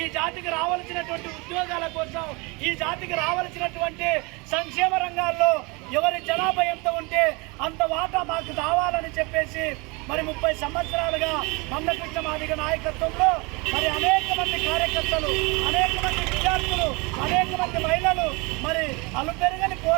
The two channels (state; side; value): quieter; left; 27.8 dB